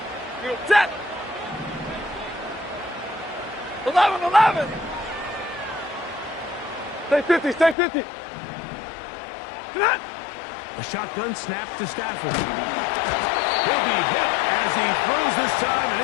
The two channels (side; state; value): right; drops out; at 7.8 s